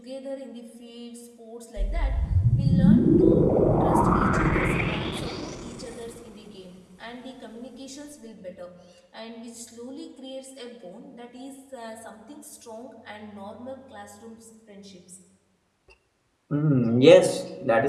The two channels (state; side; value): identical; both; correlation 1.00